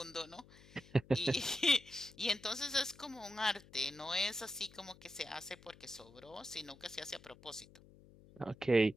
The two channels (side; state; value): left; noise; hum, 22 dB below the sound